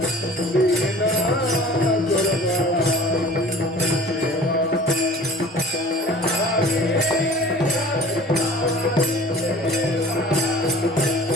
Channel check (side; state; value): both; normal; correlation 0.44